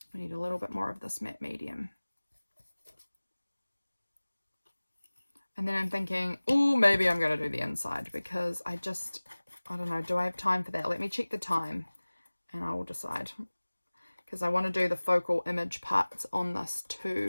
We need a little bit more of this matte medium. And then I'm thinking, oh, maybe I'm going to do the inside because I don't know, do I have time for that? Let me check the time and I will decide. Because I want to do the focal image parts on this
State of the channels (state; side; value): inverted; both; correlation -1.00